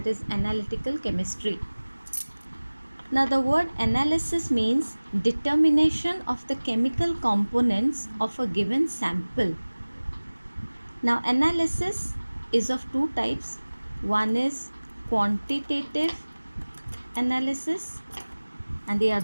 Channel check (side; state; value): both; inverted; correlation -1.00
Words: is analytical chemistry. Now the word analysis means determination of the chemical components of a given sample. Now analysis is of two types. One is quantitative analysis and the